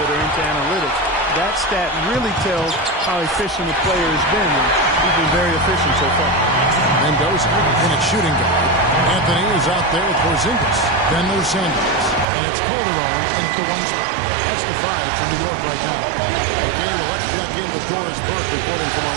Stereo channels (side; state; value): left; drops out; at 12.2 s